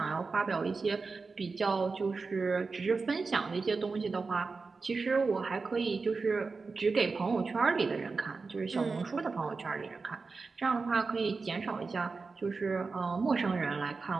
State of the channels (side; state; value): left; quieter; 4.3 dB